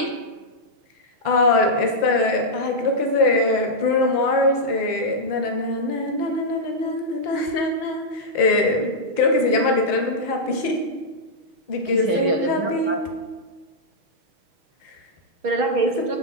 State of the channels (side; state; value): left; late; 5.8 ms